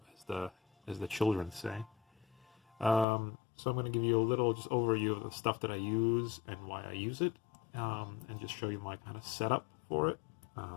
as the children say. So I'm going to give you a little just overview of the stuff that I use and why I use it, and just show you my kind of setup for it.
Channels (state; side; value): drops out; right; at 3.1 s